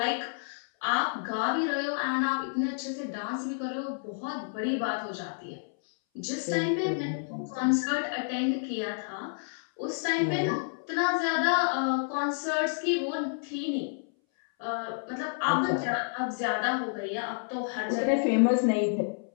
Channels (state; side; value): silent; right; 58 dB below the other